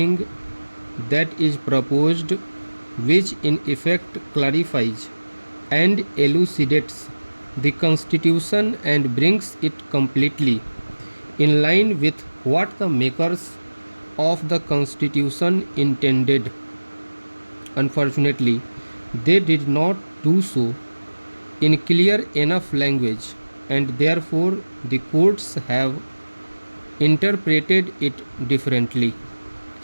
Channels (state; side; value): inverted; both; correlation -1.00